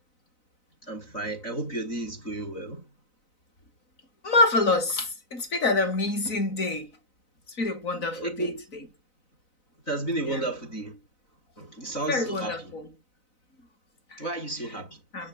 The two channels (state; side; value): late; right; 4.0 ms